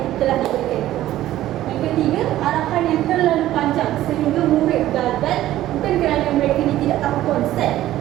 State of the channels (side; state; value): left; quieter; 14.0 dB